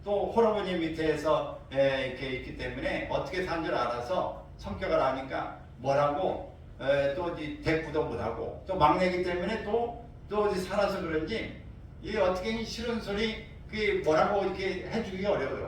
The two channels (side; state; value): both; identical; correlation 1.00